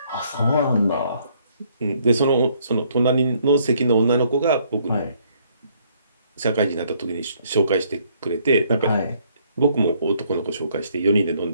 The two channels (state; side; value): inverted; both; correlation -0.67